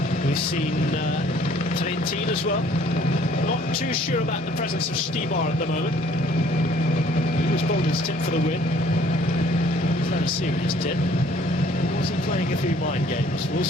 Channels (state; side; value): normal; both; correlation 0.58